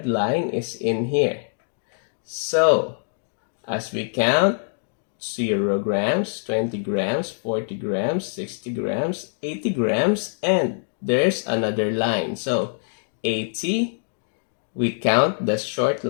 line is in here. So as we count 0 grams, 20 grams, 40 grams, 60 grams, 80 grams, and there's another line. So 80, we count the short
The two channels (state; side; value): silent; right; digital silence